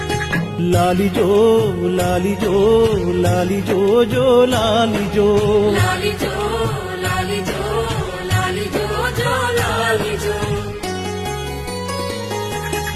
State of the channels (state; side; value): identical; both; correlation 1.00